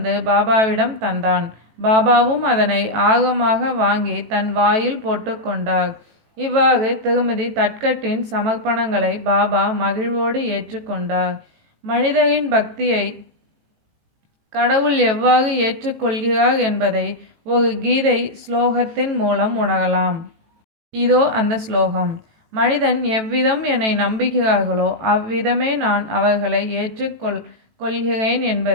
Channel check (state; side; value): late; left; 18 ms